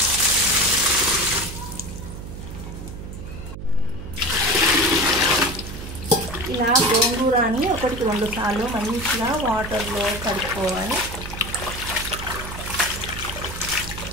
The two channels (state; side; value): noise; right; hum, 10 dB below the sound